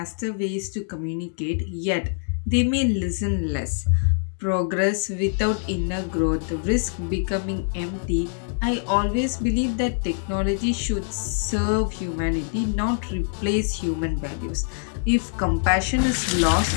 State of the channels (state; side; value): silent; right; digital silence